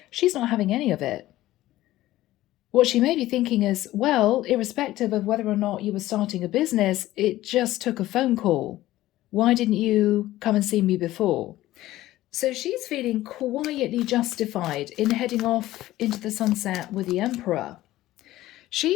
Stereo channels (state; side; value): quieter; right; 15.7 dB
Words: She's not having any of it. What she may be thinking is, well, irrespective of whether or not you were starting a business, it just took a phone call. Why didn't you come and see me before? So she's feeling quietly justified in heading off into the sunset with the Emperor.